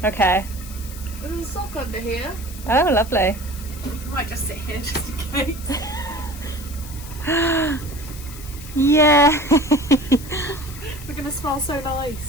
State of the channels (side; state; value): left; noise; hiss, 15 dB below the sound